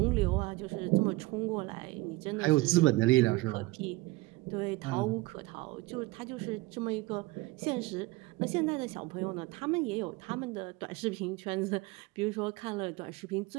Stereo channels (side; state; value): left; quieter; 20.9 dB